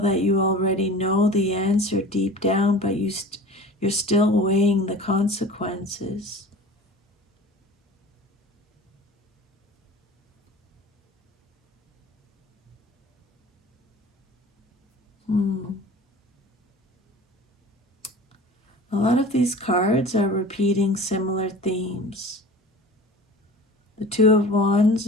that you already know the answer deep down, but you're still weighing the consequences. A lot of these cards are repeating similar themes. The 2 of Wands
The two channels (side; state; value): both; normal; correlation 0.40